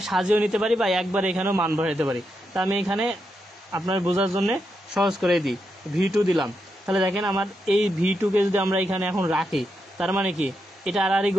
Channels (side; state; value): both; normal; correlation 0.84